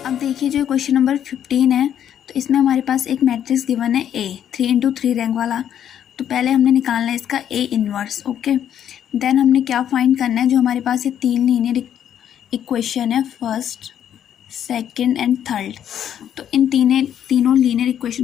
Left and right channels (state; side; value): quieter; right; 9.8 dB